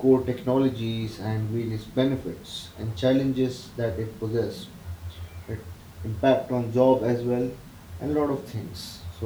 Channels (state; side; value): identical; both; correlation 1.00